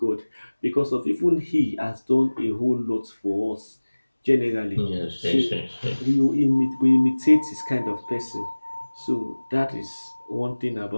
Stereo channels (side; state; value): both; inverted; correlation -1.00